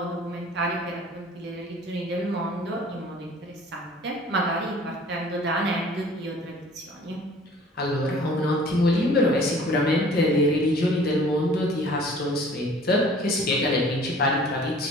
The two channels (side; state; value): both; normal; correlation 0.50